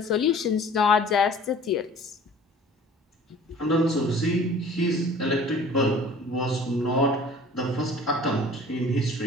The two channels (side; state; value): both; normal; correlation 0.47